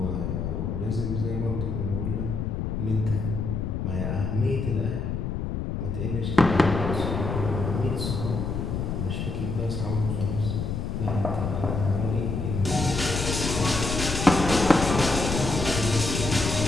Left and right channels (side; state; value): left; noise; rumble, 2 dB below the sound